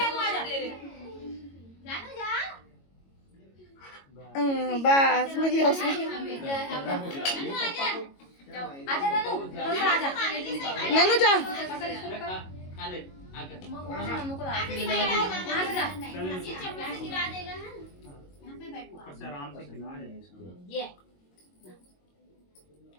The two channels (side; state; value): right; late; 22 ms